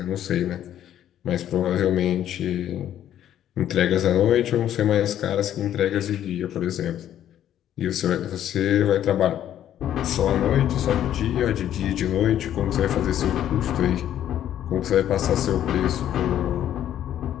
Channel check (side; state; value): right; quieter; 11.1 dB